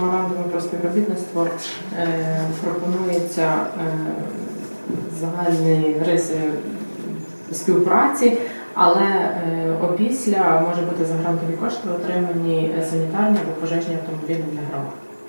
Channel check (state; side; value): inverted; both; correlation -1.00